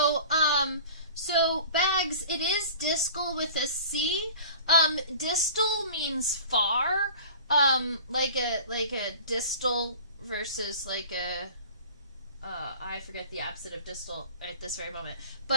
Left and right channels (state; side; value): inverted; both; correlation -0.41